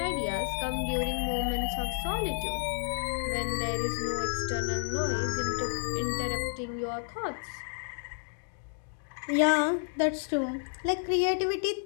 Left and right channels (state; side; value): silent; right; digital silence